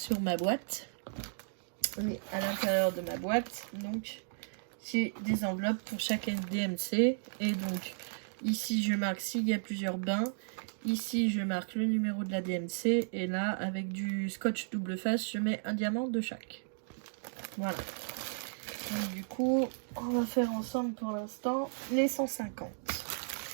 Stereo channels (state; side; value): silent; left; digital silence